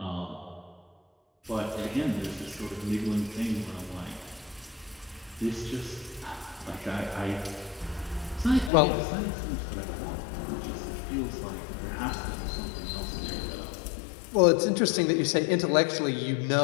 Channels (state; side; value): drops out; right; at 8.7 s